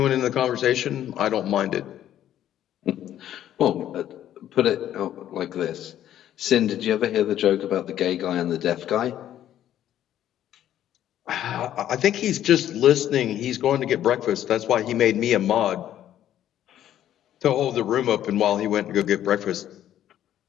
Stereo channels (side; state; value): right; quieter; 11.5 dB